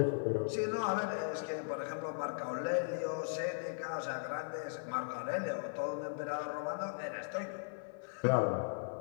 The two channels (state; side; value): silent; right; 53 dB below the other